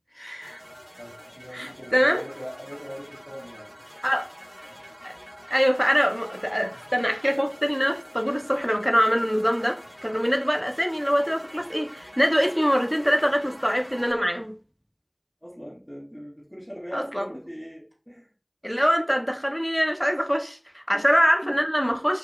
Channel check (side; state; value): both; identical; correlation 1.00